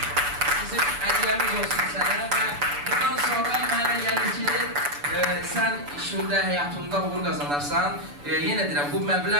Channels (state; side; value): late; left; 6.9 ms